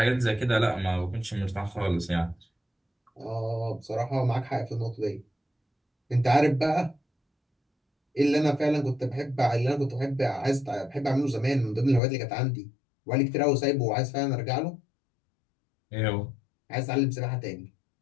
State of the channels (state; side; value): drops out; right; at 12.0 s